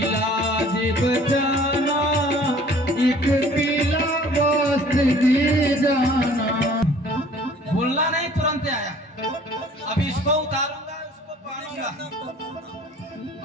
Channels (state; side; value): normal; both; correlation 0.52